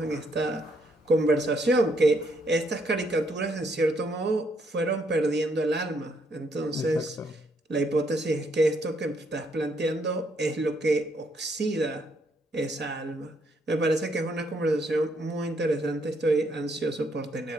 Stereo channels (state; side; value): normal; both; correlation 0.72